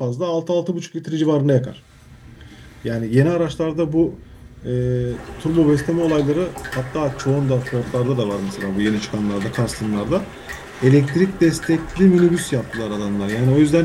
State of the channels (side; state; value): both; identical; correlation 1.00